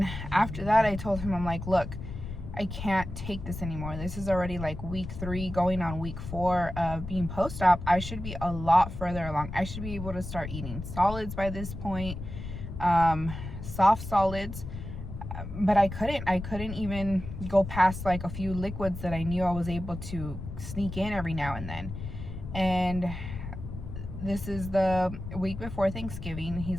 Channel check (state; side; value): noise; left; rumble, 8 dB below the sound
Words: after that, I told him, I'm like, look, I can't take this anymore. This is already like week 3 going on week 4 of being post-op. I should be a lot further along. I should be able to start eating solids by this point, soft solids, but I couldn't even go past like a few liquids that I knew I was able to sneak in every now and then. And this is the week before Thanksgiving.